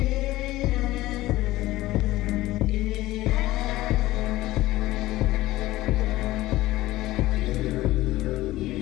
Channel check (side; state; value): right; quieter; 17.1 dB